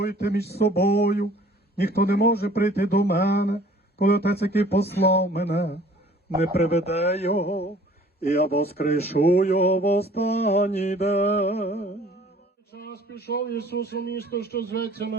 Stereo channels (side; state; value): both; normal; correlation 0.53